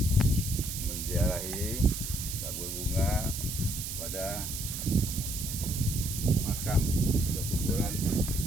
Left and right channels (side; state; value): right; noise; hiss, 5 dB below the sound